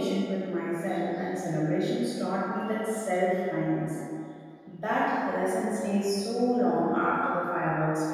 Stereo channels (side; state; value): both; identical; correlation 1.00